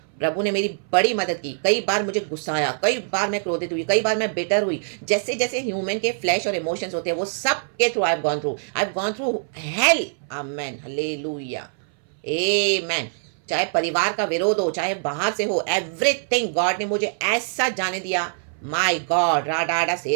प्रभु ने मेरी बड़ी मदद की। कई बार मुझे गुस्सा आया, कई बार मैं क्रोधित हुई, कई बार मैं बिटर हुई, जैसे जैसे ह्यूमन के फ्लैश और इमोशंस होते हैं, वो सब के through I have gone through hell. Amen, hallelujah, amen. चाहे परिवार का विरोध हो, चाहे बाहर से हो, एवरीथिंग गॉड ने मुझे ऐसा जाने दिया, माय गॉड, राडाडा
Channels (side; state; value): left; silent; 60 dB below the other